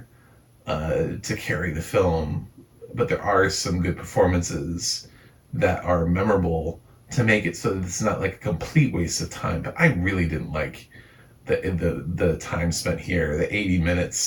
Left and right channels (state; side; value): identical; both; correlation 1.00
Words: to carry the film, but there are some good performances that are memorable to make it so that it's not like a complete waste of time. But I really didn't like the time spent here, the 80